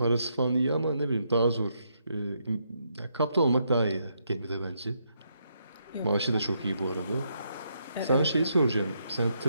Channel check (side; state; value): both; inverted; correlation -0.77